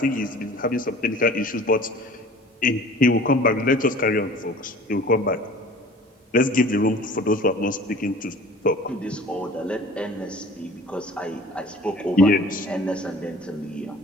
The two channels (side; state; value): both; normal; correlation 0.46